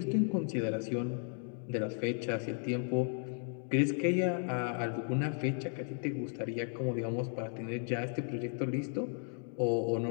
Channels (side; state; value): right; silent; 55 dB below the other